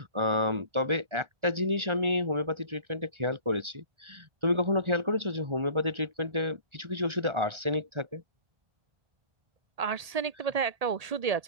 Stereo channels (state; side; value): late; left; 1.8 ms